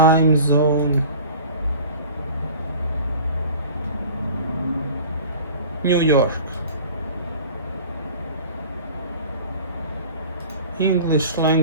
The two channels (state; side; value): inverted; both; correlation -0.42